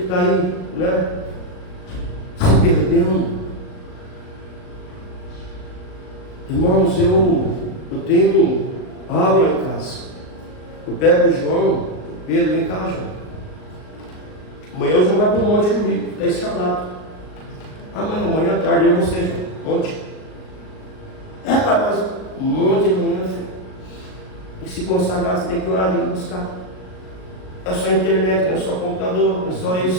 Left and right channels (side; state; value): right; late; 38 ms